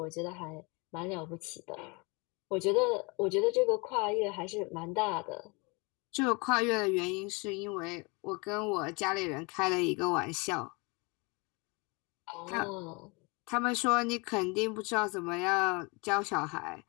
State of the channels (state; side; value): quieter; right; 28.8 dB